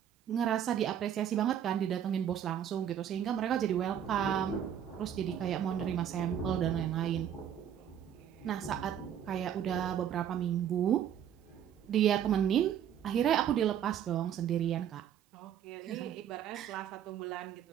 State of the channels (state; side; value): quieter; left; 9.5 dB